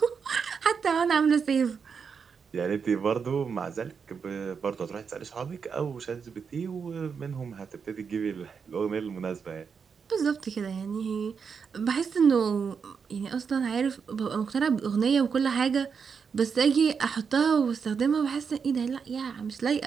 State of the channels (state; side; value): quieter; left; 6.1 dB